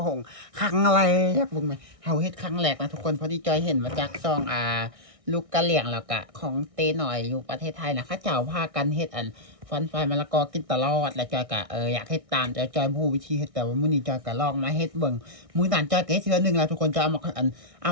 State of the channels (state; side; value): late; left; 1.6 ms